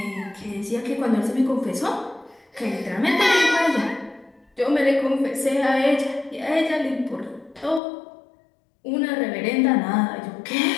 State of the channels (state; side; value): drops out; right; at 7.8 s